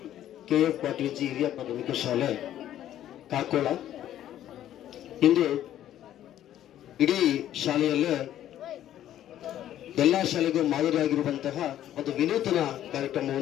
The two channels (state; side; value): quieter; right; 11.9 dB